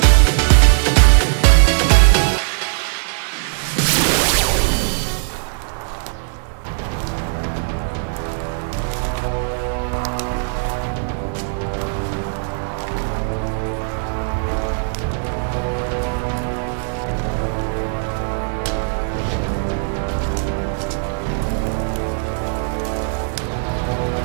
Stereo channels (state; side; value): silent; left; digital silence